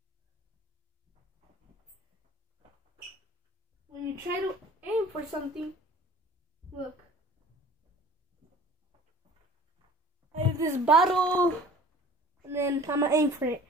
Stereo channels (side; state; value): both; normal; correlation 0.46